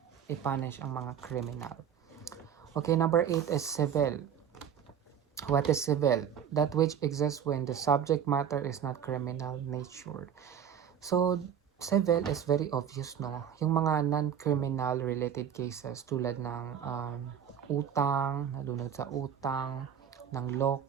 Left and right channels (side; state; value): left; quieter; 8.5 dB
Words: ipunish ang mga criminal. Okay, number 8 is civil. What is civil? That which exists when the subject matter is not criminal nature. So, civil is very obvious, no? Yung mga non-criminal related cases tulad ng utang, nalunod sa utang, ng